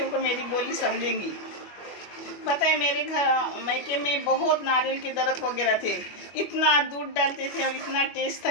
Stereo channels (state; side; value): late; right; 25 ms